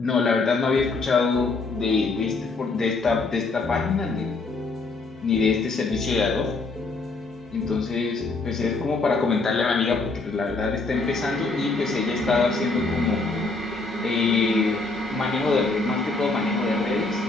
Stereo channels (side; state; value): right; quieter; 3.7 dB